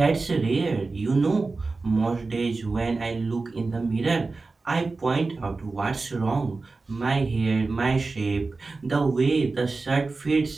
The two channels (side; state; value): left; quieter; 3.8 dB